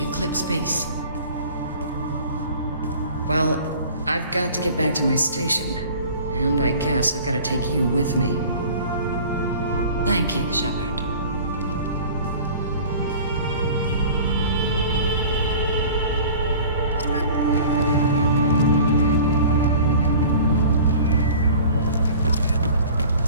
Eclipse base. Well, I've got to get back to my station. And I guess I've got to take you with me. Thank you, Shepard.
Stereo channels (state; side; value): inverted; both; correlation -0.43